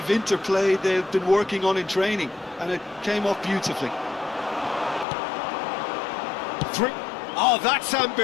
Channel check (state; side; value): drops out; right; at 5.1 s